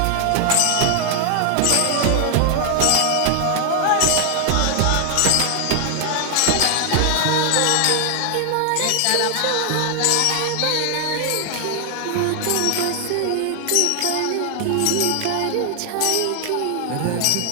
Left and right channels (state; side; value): different; both; correlation 0.00